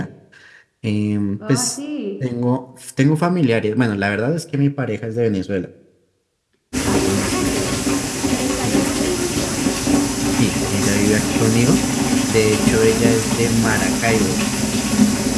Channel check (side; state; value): both; identical; correlation 1.00